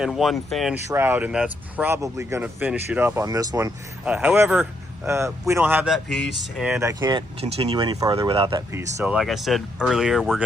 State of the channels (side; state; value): both; normal; correlation 0.76